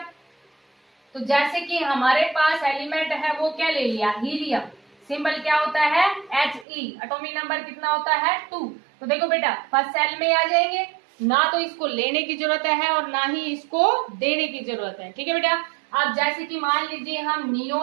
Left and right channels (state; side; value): drops out; left; at 6.7 s